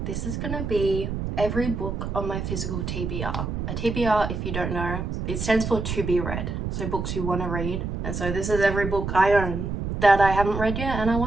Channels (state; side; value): noise; right; rumble, 4 dB below the sound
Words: This is gonna be every book on my physical TBR. A TBR, if you don't know, it stands for to be read. So books you want to read. And so this is every book I own that I haven't read yet and I